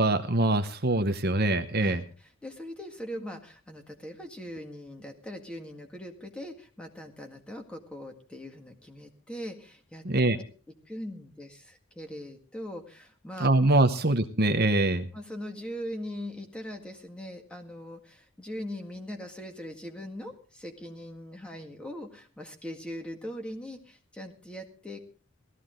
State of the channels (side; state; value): both; normal; correlation 0.48